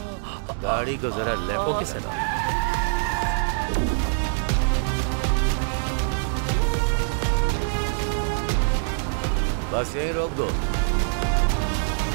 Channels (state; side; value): silent; left; digital silence